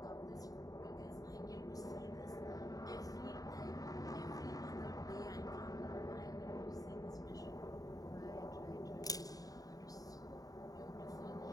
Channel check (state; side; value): late; right; 0.18 ms